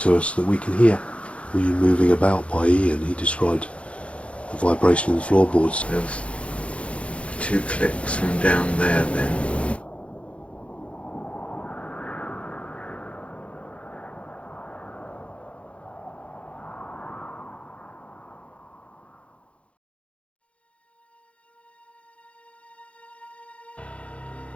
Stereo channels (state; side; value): late; right; 0.061 ms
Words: us that we can hear? Were you moving about by Ian? He described the vibration in the floorboards. There's 2 clicks from down there then.